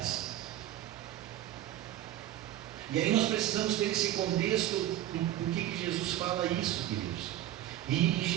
E aí nós precisamos ter esse contexto do que Jesus fala isso, queridos. E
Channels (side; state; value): left; quieter; 13.0 dB